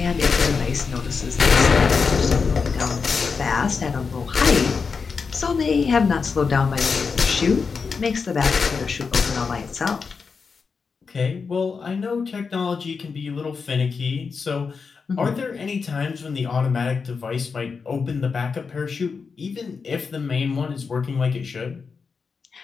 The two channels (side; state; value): right; quieter; 5.2 dB